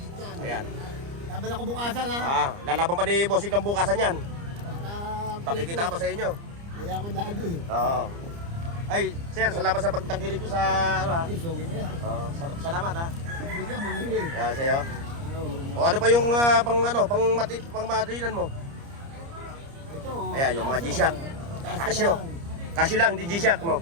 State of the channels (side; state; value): left; late; 30 ms